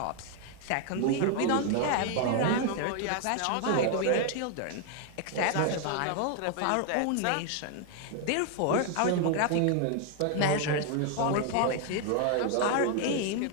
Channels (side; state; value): both; different; correlation 0.00